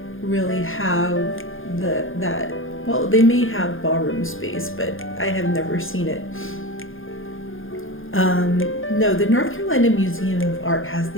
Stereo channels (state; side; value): late; right; 0.59 ms